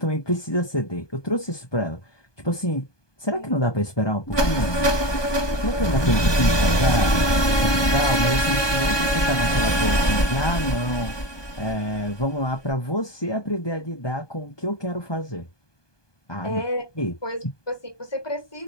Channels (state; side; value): late; right; 1.2 ms